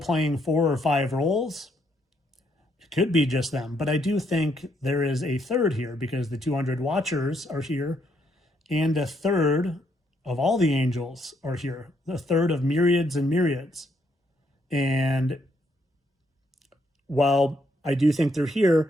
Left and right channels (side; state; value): both; normal; correlation 0.74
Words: 4 or 5 roles, it could be just them. But I do think there is a third here, because the 200 watchers are here, and a third of all the angels are here, a third of myriads and myriads. And while I do think they're